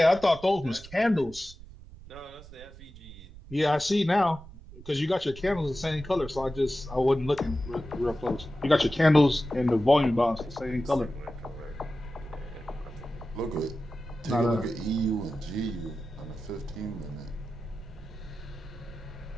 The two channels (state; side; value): noise; right; rumble, 18 dB below the sound